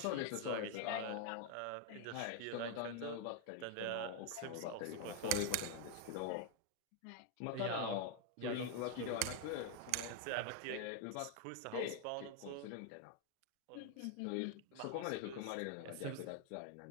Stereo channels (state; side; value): different; both; correlation 0.00